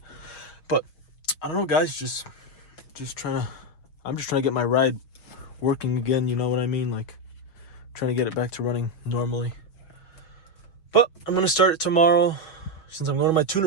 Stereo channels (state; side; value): late; right; 6.0 ms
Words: But I don't know, guys. I'm just trying to get my ride working again. You know what I mean? Like, trying to get it back to running normally. But I'm gonna start it tomorrow. Since I'm going to my